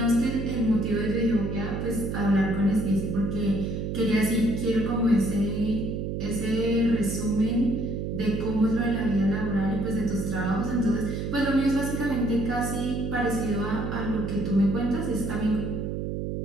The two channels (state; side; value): noise; right; hum, 3 dB below the sound